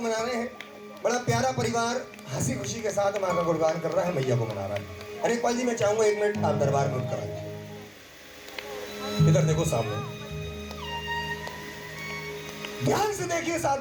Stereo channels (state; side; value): identical; both; correlation 1.00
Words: मना रहे हैं। बड़ा प्यारा परिवार हंसी खुशी के साथ माँ का गुणगान कर रहा है, मैया को मना रहा है। अनेकपाल जी मैं चाहूंगा 1 मिनट आप दरबार में करा दीजिए। इधर देखो सामने, ध्यान से देखिए इस